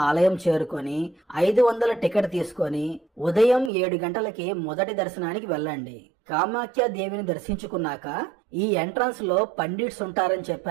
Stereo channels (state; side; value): drops out; left; at 3.7 s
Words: ఆలయం చేరుకొని 500 టికెట్ తీసుకొని ఉదయం 7 గంటలకి మొదటి దర్శనానికి వెళ్ళండి. కామాఖ్య దేవిని దర్శించుకున్నాక ఈ ఎంట్రన్స్ లో పండిట్స్ ఉంటారని